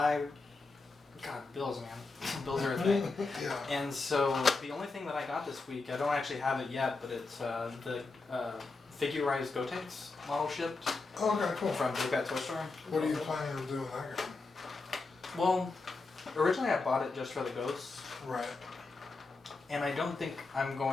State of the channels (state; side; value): quieter; right; 3.8 dB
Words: God, bills, man. Bills are a thing. Yeah. And so, the only thing that I got this week, I don't actually have it yet, but it's the figurized Gotenks model shipped Okay, cool. from Big Bad Toy Store. What are you planning on doing with that game? Well, originally I bought it just for the ghosts, Right. and I don't think I'm